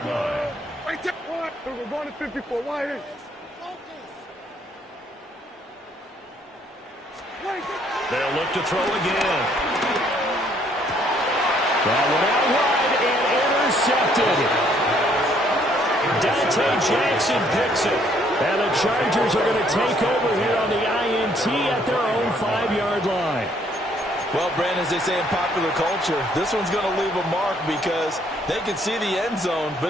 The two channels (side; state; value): both; normal; correlation 0.66